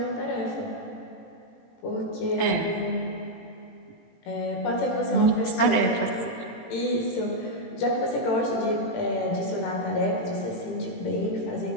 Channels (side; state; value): right; late; 18 ms